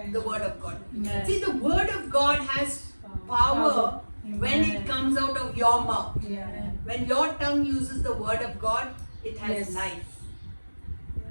The word of God. Amen. See, the word of God has power when it Amen. comes out of your mouth. Yeah. When your tongue uses the word of God, it has Yes. life.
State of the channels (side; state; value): both; inverted; correlation -1.00